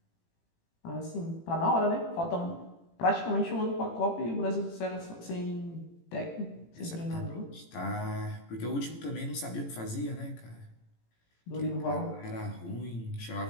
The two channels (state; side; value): late; right; 18 ms